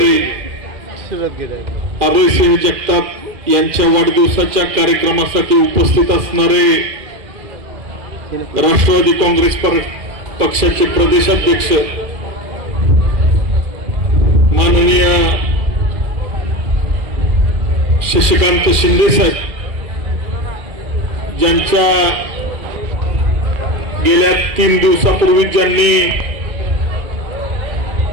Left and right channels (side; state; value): left; late; 2.3 ms